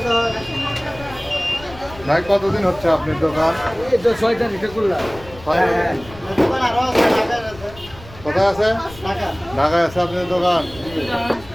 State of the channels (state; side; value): noise; left; rumble, 19 dB below the sound